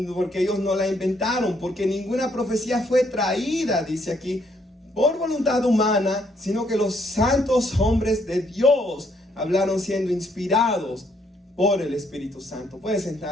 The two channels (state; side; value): normal; both; correlation 0.70